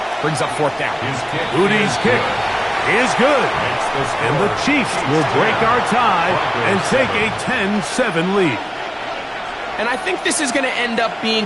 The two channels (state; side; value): identical; both; correlation 1.00